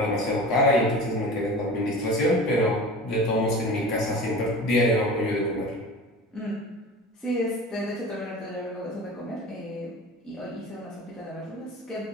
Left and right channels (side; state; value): both; normal; correlation 0.35